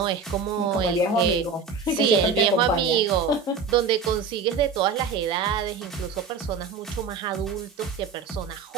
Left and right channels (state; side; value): quieter; left; 5.1 dB